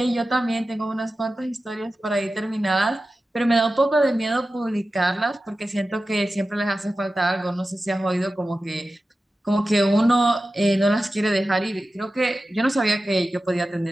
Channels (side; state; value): both; normal; correlation 0.94